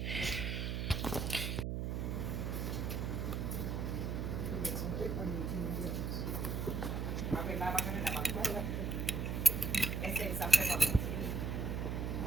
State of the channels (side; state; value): right; noise; hum, 1 dB below the sound